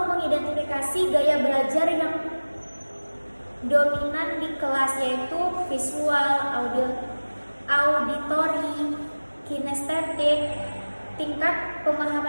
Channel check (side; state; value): both; inverted; correlation -1.00